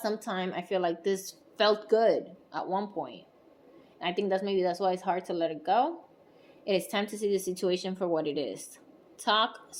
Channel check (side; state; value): both; identical; correlation 1.00